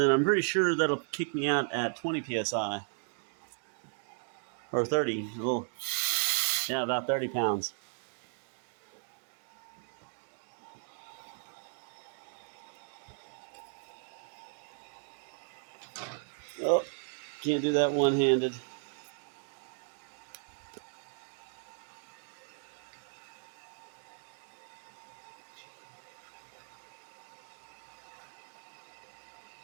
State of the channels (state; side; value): silent; left; digital silence